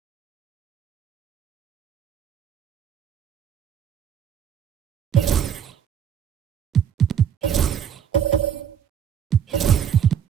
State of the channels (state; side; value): quieter; left; 8.5 dB